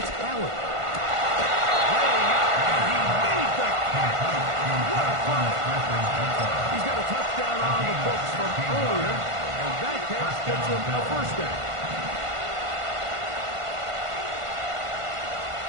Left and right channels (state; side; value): late; left; 1.5 ms